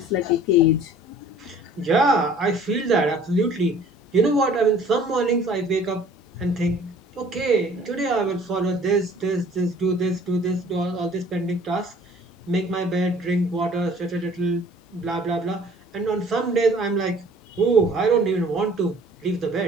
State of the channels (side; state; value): both; normal; correlation 0.51